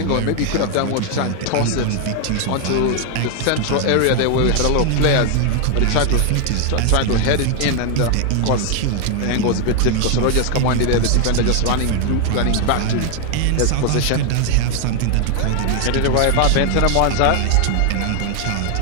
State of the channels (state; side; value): different; both; correlation 0.00